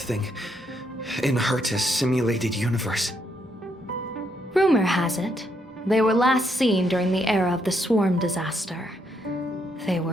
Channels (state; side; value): normal; both; correlation 0.76